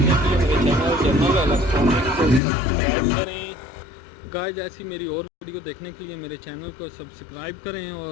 के लिए मेरे चैनल इलेक्ट्रॉनिक को सब्सक्राइब करें। गाइस ऐसी मेरी और वीडियो देखने के लिए मेरे चैनल को सब्सक्राइब करें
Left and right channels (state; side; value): drops out; right; at 2.4 s